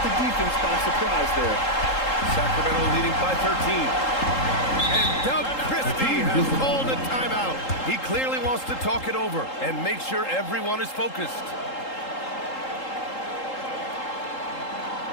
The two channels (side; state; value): right; late; 3.8 ms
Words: the defense by surprise there. Sacramento leading by 13. And Doug Christie has called a timeout. He clearly wants to talk it over and make sure everyone is focused.